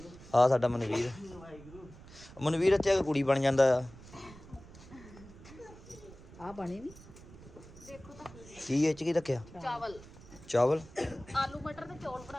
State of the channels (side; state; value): right; noise; rumble, 19 dB below the sound